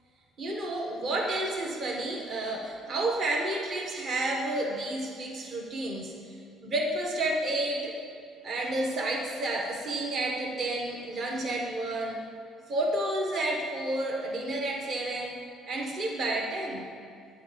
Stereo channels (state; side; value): normal; both; correlation 0.63